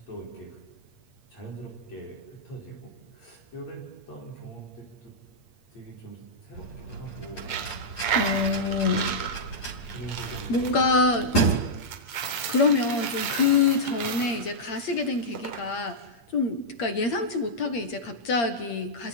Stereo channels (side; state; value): right; late; 8.6 ms